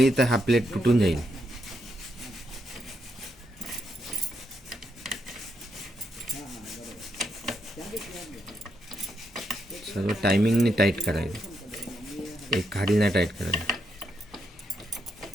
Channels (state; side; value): normal; both; correlation 0.80